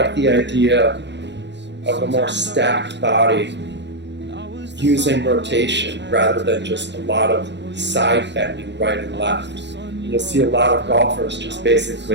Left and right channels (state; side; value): late; left; 0.51 ms